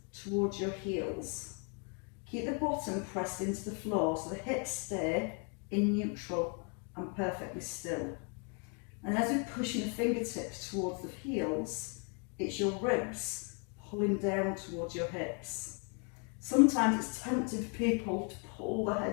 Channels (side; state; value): right; quieter; 38.2 dB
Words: towards your heels. Keep the bottom pressed into the floor so the hips stay in neutral and perfectly still. And as we're pushing the fingertips towards the heels, it's your ribs pulling down towards your hips. Sometimes it's tempting for people to pull the